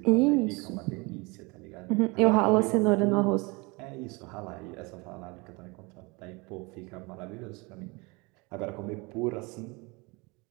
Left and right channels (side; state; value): left; quieter; 26.8 dB